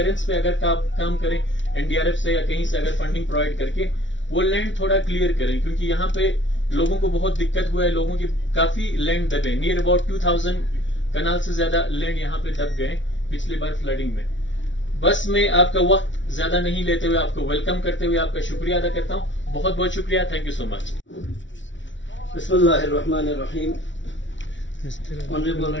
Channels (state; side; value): late; right; 0.55 ms